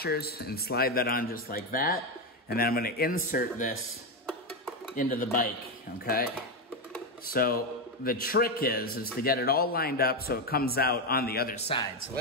and slide that on just like that. And then I'm gonna insert this into the bike, okay? So the trick is to get it all lined up so it comes out on the other side. So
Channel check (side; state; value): both; normal; correlation 0.09